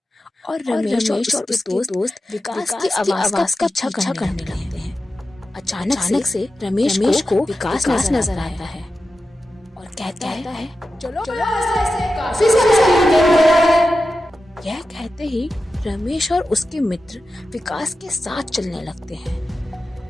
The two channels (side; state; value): both; normal; correlation 0.92